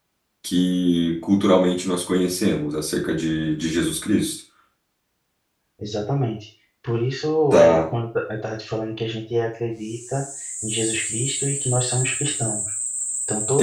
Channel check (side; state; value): both; identical; correlation 1.00